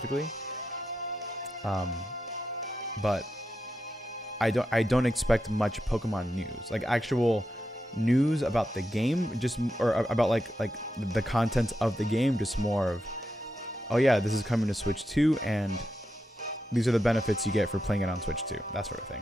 But I don't expect much Pokemon news, like actual news about the game, just or about like the content of the game, just more of, oh yeah, this is coming to Switch 2 and these are the benefits you get for playing it on Switch 2, that sort of thing.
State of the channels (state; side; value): normal; both; correlation 0.86